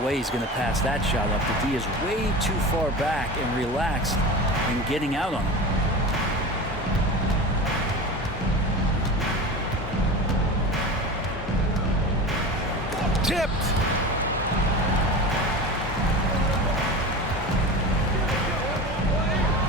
way he's going to pass that shot up. The D is way too far back and relaxed in getting out on him. Tipped.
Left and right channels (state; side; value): normal; both; correlation 0.30